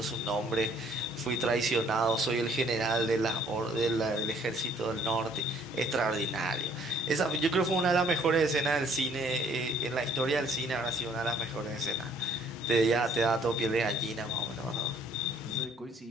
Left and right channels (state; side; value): normal; both; correlation 0.60